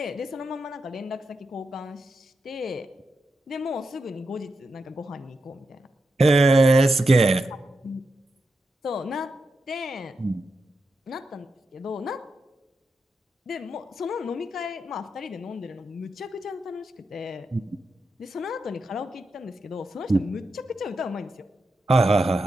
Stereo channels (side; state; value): both; normal; correlation 0.87